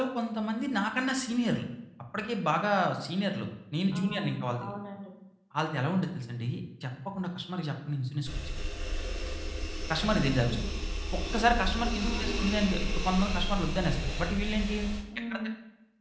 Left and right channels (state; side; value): identical; both; correlation 1.00